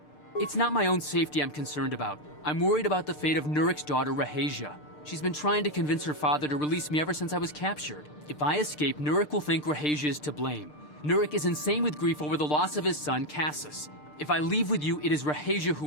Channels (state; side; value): late; right; 6.7 ms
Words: It's not my own safety I'm concerned about. I'm worried about the fate of Nurik's daughter, Rahasia. She's been trying to convince her father to release me ever since I was captured. If I escape, Nurik will think Rahasia is to blame. Nurik is insane with grief over the loss of his son, Cassus. If I leave with you, it is Rahasia who